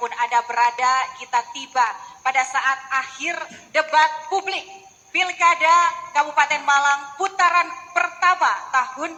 Anda berada, kita tiba pada saat akhir debat publik Pilkada Kabupaten Malang putaran pertama tahun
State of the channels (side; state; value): both; identical; correlation 1.00